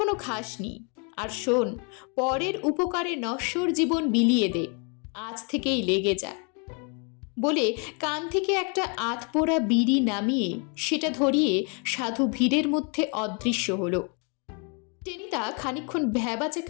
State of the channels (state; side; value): quieter; right; 35.8 dB